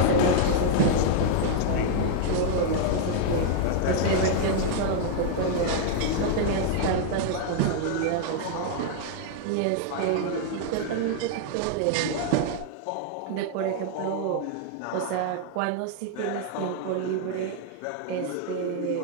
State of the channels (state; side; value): different; both; correlation 0.00